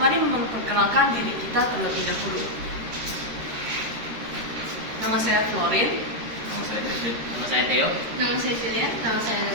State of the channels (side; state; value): left; late; 13 ms